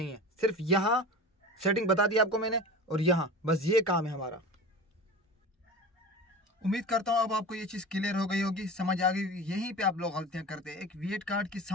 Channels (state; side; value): normal; both; correlation 0.33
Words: है, सिर्फ यहाँ सेटिंग बता दी आपको मैंने और यहाँ बस ये काम है हमारा। उम्मीद करता हूँ अब आपको ये चीज़ क्लियर हो गई होगी, समझ आ गई। यहीं पे आप लोग गलतियाँ करते हैं। एक वीएट कार्ड की